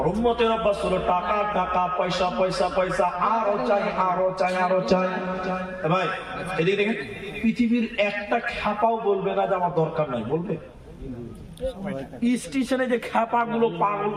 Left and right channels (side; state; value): both; identical; correlation 1.00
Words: উম্মতের অভ্যাস হলো টাকা টাকা, পয়সা পয়সা পয়সা, আরো চাই আরো চাই আরো চাই। ভাই এদিকে দেখেন, পৃথিবীর একটা খ্যাপাও বলবে না যে আমার দরকার নাই, বলবে? স্টেশনে যে খ্যাপা গুলো পাগল